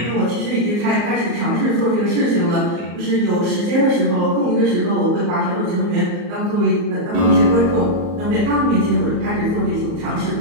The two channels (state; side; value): late; left; 34 ms